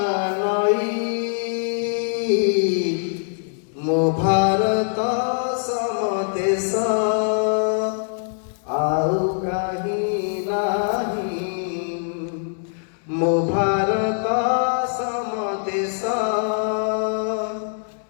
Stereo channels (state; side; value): silent; right; digital silence